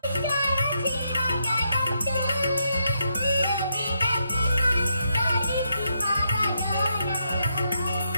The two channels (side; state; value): both; inverted; correlation -0.80